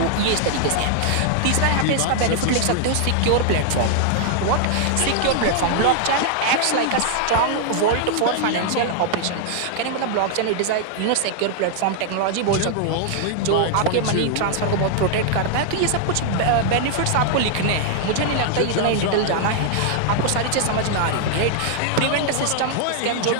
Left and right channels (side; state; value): both; different; correlation 0.00